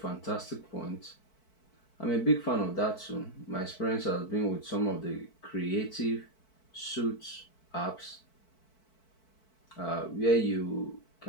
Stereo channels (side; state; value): right; late; 4.6 ms